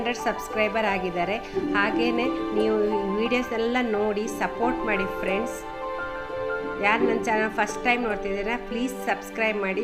ಸಬ್ಸ್ಕ್ರೈಬರ್ ಆಗಿದ್ದಾರೆ. ಹಾಗೆಯೇ ನೀವು ವೀಡಿಯೋಸ್ನೆಲ್ಲ ನೋಡಿ ಸಪೋರ್ಟ್ ಮಾಡಿ ಫ್ರೆಂಡ್ಸ್. ಯಾರು ನನ್ನ ಚಾನಲ್ ಫಸ್ಟ್ ಟೈಮ್ ನೋಡ್ತಿದ್ದೀರಾ ಪ್ಲೀಸ್ ಸಬ್ಸ್ಕ್ರೈಬ್ ಮಾಡಿ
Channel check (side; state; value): both; identical; correlation 1.00